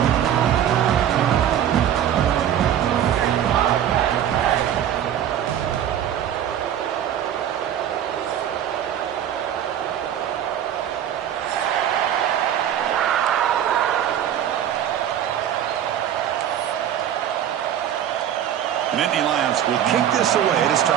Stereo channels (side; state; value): left; quieter; 10.3 dB